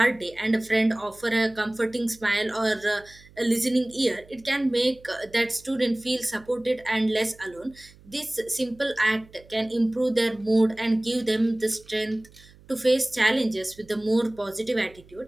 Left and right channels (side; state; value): right; noise; hum, 25 dB below the sound